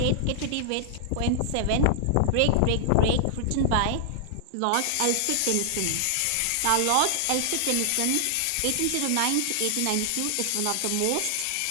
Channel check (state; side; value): different; both; correlation -0.01